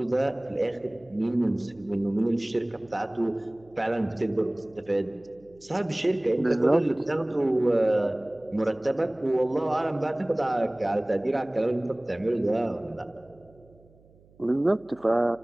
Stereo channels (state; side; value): noise; right; hum, 28 dB below the sound